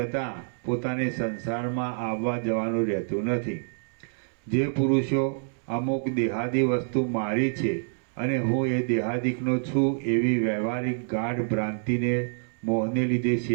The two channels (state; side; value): silent; left; 60 dB below the other